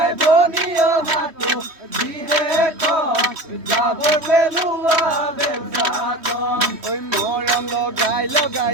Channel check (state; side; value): late; left; 3.2 ms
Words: বনিয়া হাতু দিহে কম যাব পেলুৱা বেলচাখন ওই মৰম লগাই লগাই